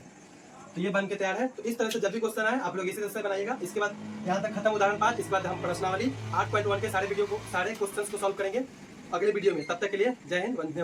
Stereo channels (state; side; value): identical; both; correlation 1.00